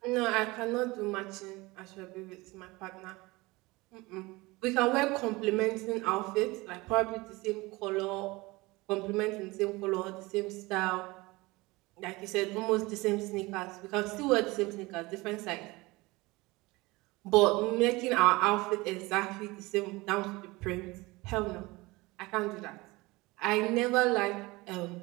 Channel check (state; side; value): quieter; left; 22.3 dB